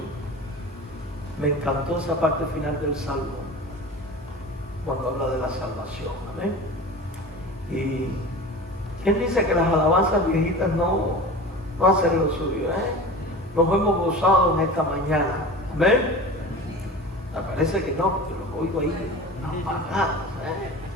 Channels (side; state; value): both; normal; correlation 0.34